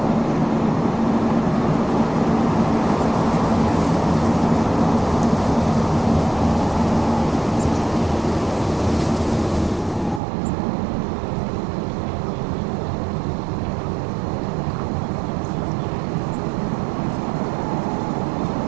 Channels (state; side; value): drops out; left; at 10.2 s